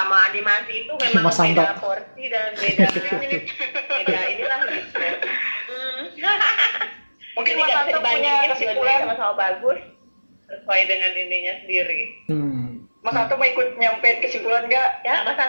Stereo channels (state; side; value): inverted; both; correlation -1.00